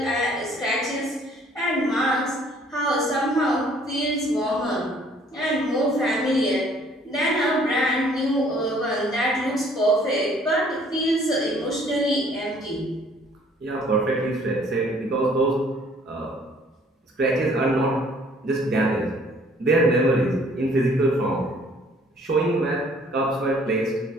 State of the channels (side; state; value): both; normal; correlation 0.59